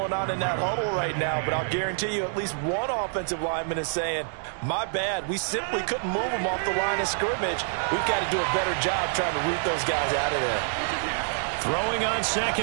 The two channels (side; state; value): left; silent; digital silence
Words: on in that huddle right now, but I'll guarantee you at least one offensive lineman is saying, my bad, we simply couldn't move them off the line of scrimmage. We've got to do a better job trying to root those guys out of there. Throwing on